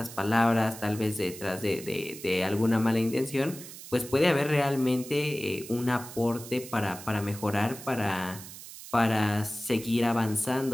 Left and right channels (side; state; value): right; noise; hiss, 14 dB below the sound